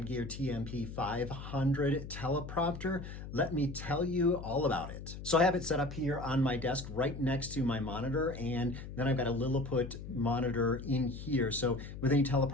Gear TMP500 teleprompter. Let me tell you all about it. So I have it set up here on my desk right next to my monitor, and then I've got a Lilliput monitor in here. So with any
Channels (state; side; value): noise; left; hum, 10 dB below the sound